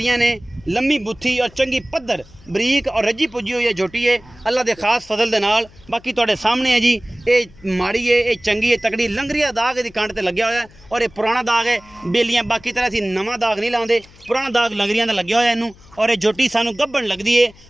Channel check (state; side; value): noise; left; hum, 24 dB below the sound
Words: ने, लम्मी बुत्थी और चंगी पद्धर बरीक और रजी पुजी हुई है झोटी है अल्लाह दे खास फजल दे नाल। बाकी तुहाडे सामने है जी, ये माड़ी है, ये चंगी है, तकड़ी। लंगरिया दाग इहदी कंड ते लग्या होया है और ये पुराना दाग है बेलियां। बाकी तरह असीं नवां दाग नहीं लांदे, पुराना दाग लंगरियां ते लग्या होया इनू। और ये झोटी सानू गब्बन लगदी है